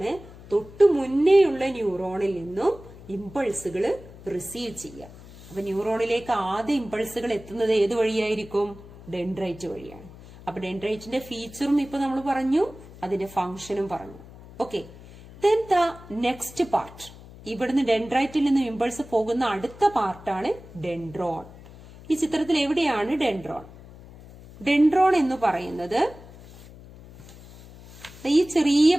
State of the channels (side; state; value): left; noise; hum, 19 dB below the sound